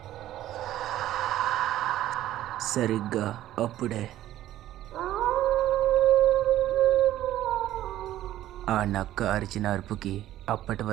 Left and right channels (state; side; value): quieter; left; 13.5 dB